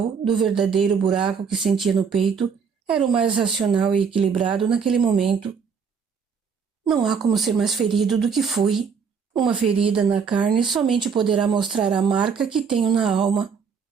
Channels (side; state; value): left; quieter; 6.2 dB